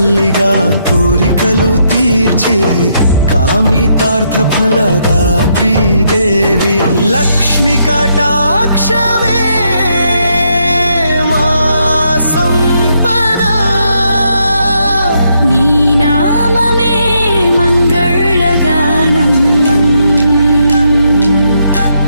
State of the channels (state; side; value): inverted; both; correlation -0.77